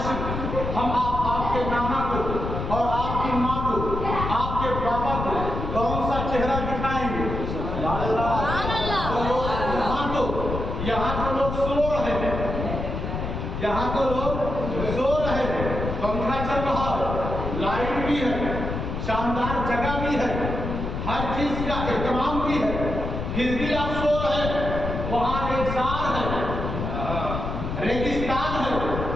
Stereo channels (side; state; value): left; noise; rumble, 4 dB below the sound